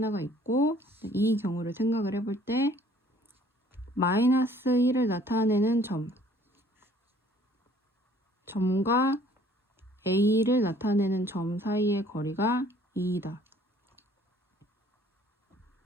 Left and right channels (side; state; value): both; normal; correlation 0.56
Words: 있고 이 경우를 생각을 해볼 때 마이너스 1을 나타내는 점과 A를 나타내는 점 사이의 거리가 2이다.